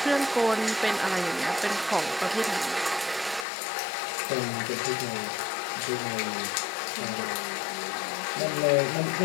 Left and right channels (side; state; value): right; drops out; at 3.5 s